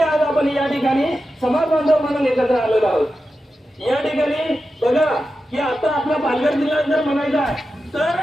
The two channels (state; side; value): normal; both; correlation 0.91